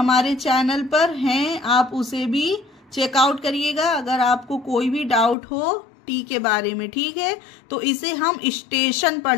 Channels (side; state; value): right; drops out; at 5.4 s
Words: चैनल पर हैं, आप उसे भी चेकआउट करिएगा अगर आपको कोई भी डाउट हो टी के बारे में। ठीक है, तो इसे हम स्टेशन